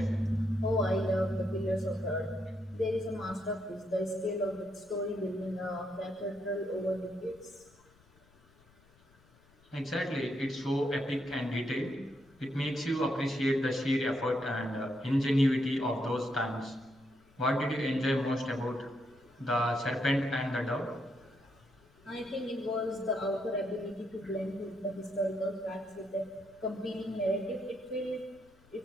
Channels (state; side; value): noise; left; rumble, 29 dB below the sound